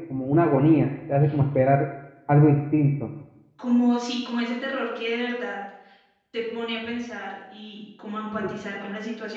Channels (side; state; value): both; identical; correlation 1.00